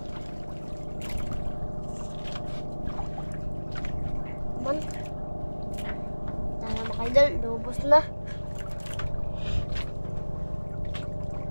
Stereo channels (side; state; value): both; inverted; correlation -1.00